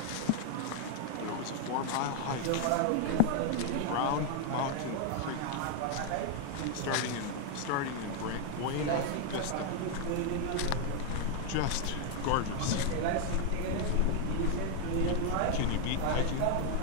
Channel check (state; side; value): different; both; correlation 0.00